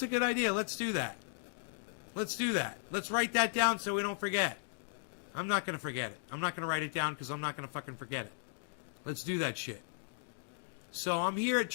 a good idea. Let's do that. Let's write that down so we don't forget. I'm not going to forget it. I'm not going to write it down because I'm not going to fucking forget it. Let's do that shit. So I'm here at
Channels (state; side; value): silent; right; digital silence